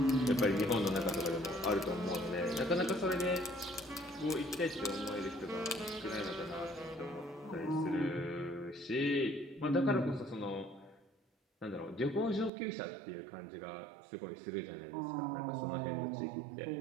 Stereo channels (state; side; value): drops out; left; at 12.5 s